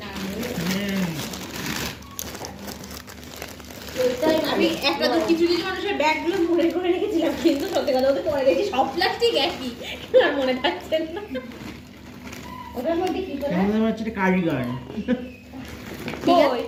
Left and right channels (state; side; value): identical; both; correlation 1.00